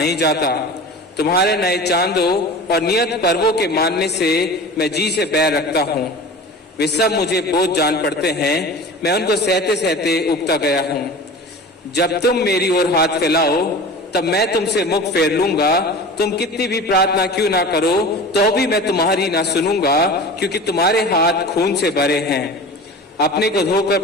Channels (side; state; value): both; normal; correlation 0.36